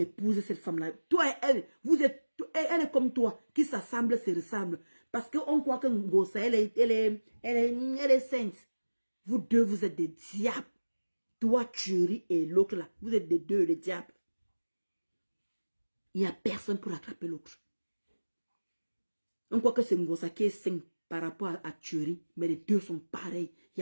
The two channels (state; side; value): inverted; both; correlation -1.00